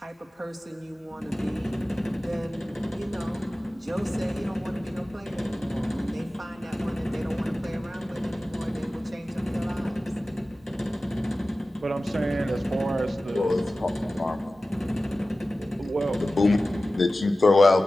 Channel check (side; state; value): both; normal; correlation 0.96